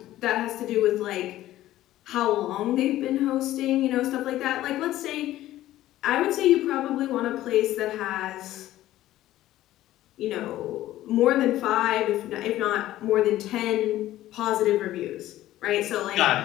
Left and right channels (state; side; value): quieter; right; 14.5 dB